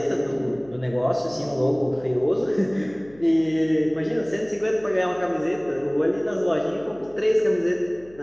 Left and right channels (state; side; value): noise; left; hum, 24 dB below the sound